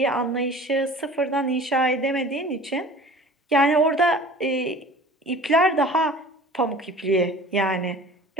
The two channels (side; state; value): both; normal; correlation 0.44